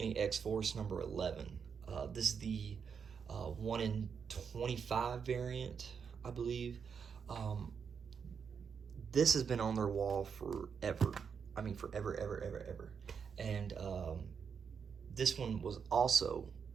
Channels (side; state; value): left; quieter; 6.5 dB